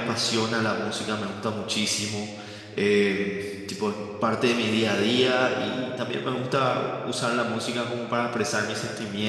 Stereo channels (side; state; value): both; identical; correlation 1.00